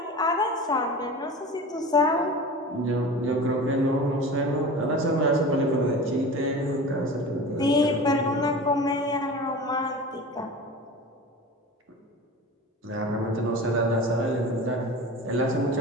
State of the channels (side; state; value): both; normal; correlation 0.34